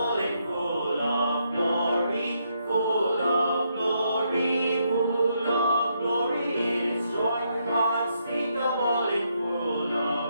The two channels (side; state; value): both; inverted; correlation -0.77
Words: and full of glory, full of glory, full of glory. It is joy unspeakable and full